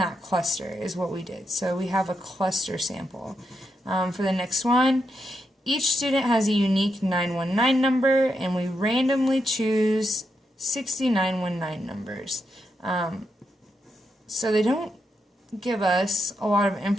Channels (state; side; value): normal; both; correlation 0.83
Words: cluster is what we did. So we have a cluster sample. For the next one, each student has a unique 919 number, and we randomly choose 60 919 numbers. So they don't give us a lot of